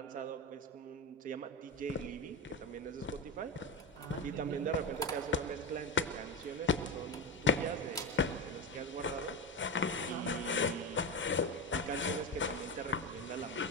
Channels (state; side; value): normal; both; correlation 0.18